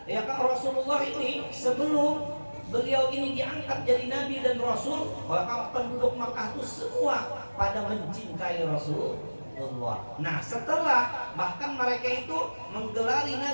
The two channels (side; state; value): both; inverted; correlation -1.00